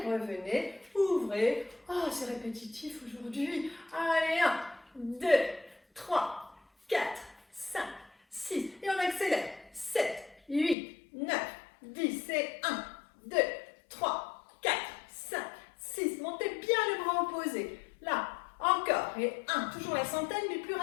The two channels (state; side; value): drops out; right; at 10.8 s